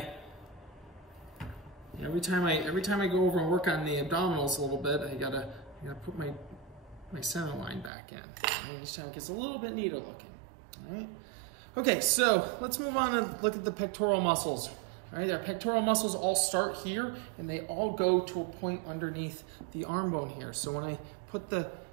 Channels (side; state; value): left; drops out; at 7.9 s